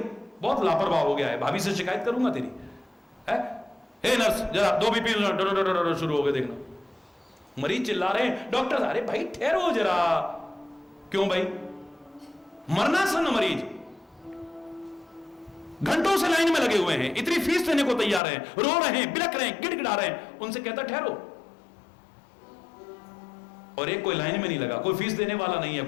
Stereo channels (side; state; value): right; drops out; at 18.2 s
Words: बहुत लापरवाह हो गया है, भाभी से शिकायत करूंगा तेरी। है ए नर्स, जरा दो बीपी शुरू हो गए, देखना। मरीज चिल्ला रहे हैं, डॉक्टर अरे भाई ठहरो जरा। क्यों भाई? मरनासन्न मरीज घंटों से लाइन में लगे हुए हैं, इतनी फीस देने को तैयार हैं, रो रहे हैं, बिलख रहे हैं, गिड़गिड़ा रहे हैं, उनसे कहता ठहरो। और एक कोई लाइन में नहीं लगा, कोई फीस देने वाला नहीं है,